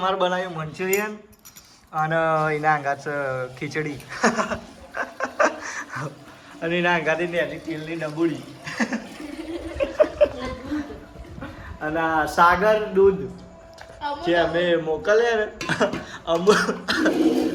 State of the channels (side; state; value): both; identical; correlation 1.00